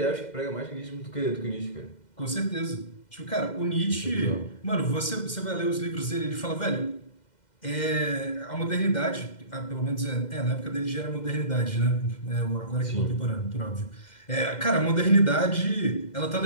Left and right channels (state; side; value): late; right; 2.1 ms